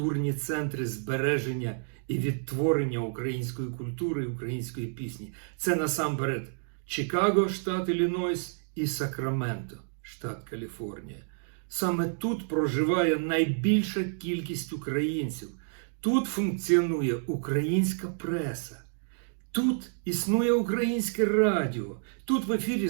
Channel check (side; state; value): left; silent; digital silence